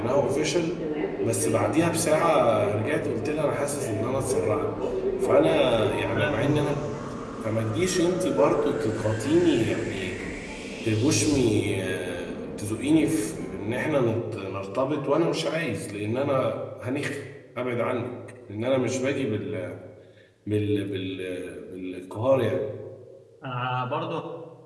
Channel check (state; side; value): identical; both; correlation 1.00